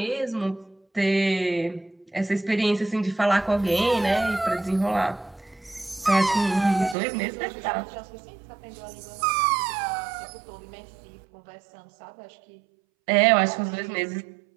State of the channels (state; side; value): drops out; left; at 7.0 s